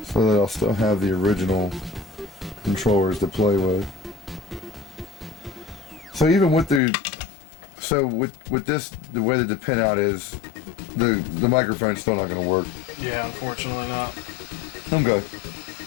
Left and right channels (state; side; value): drops out; right; at 6.8 s